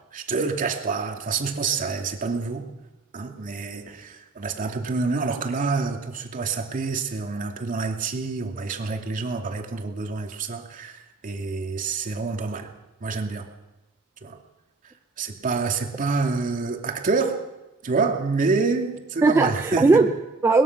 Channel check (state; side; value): quieter; left; 3.7 dB